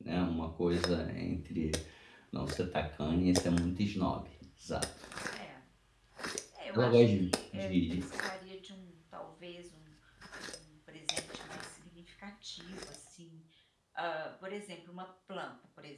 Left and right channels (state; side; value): identical; both; correlation 1.00